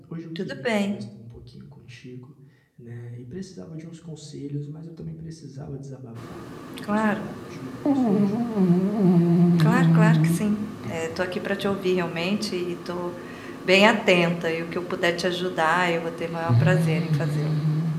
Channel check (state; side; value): identical; both; correlation 1.00